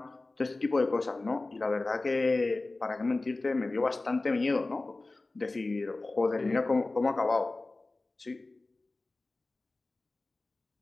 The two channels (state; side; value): quieter; right; 3.2 dB